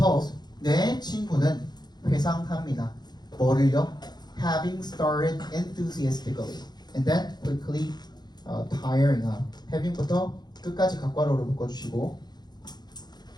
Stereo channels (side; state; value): right; late; 0.20 ms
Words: 내 친구는 회상합니다. 뭐를요? Having started enthusiastically and then quickly tiring out. having부터 끝까지 각괄호로 묶어주시고